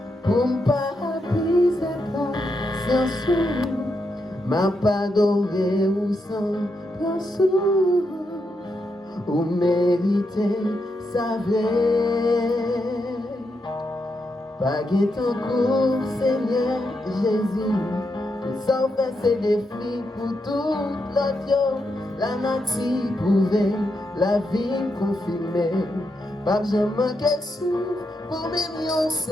pour ne pas briser sans sou, m'a pas adoré ou sans pensou. Ou méritez sa vraie. Pas ton cours, Seigneur Jésus. Que ça fait ses défis pour toute l'autre. La nature prouvée, la vie confirmée. Pas jamais manquer souffle pour même une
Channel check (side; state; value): both; normal; correlation 0.83